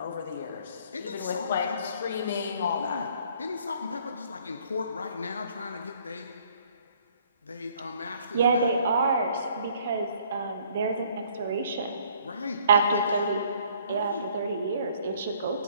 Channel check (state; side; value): inverted; both; correlation -0.61